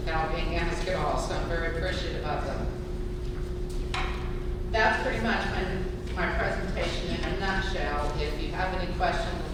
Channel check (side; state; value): both; identical; correlation 1.00